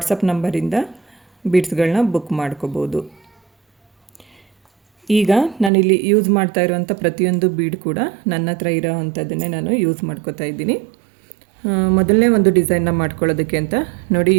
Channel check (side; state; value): left; drops out; at 5.7 s